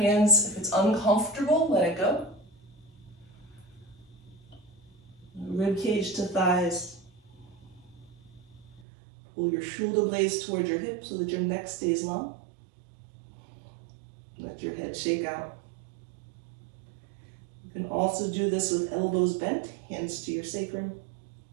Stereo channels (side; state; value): left; drops out; at 8.8 s